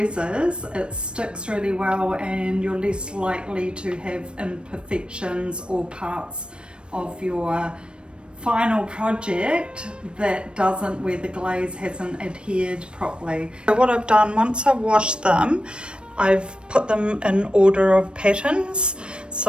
it sticks really well and you're less likely to have imperfections or parts of your final project that doesn't, where the glaze hasn't adhered properly. So what I've done, once I've washed them, I've put them in order of patterns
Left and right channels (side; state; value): left; late; 0.056 ms